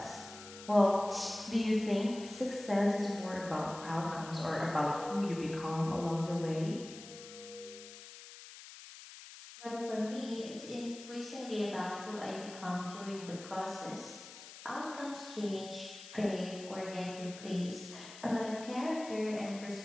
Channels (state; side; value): noise; left; hiss, 15 dB below the sound